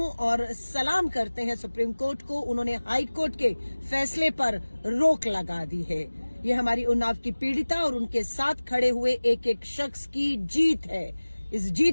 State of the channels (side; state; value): both; inverted; correlation -1.00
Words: और सलाम करते हैं सुप्रीम कोर्ट को। उन्होंने हाई कोर्ट के फैसले पर रोक लगा दी है। ये हमारी उन्नाव की पीड़िता और उनके साथ खड़े हुए एक एक शख्स की जीत है। इस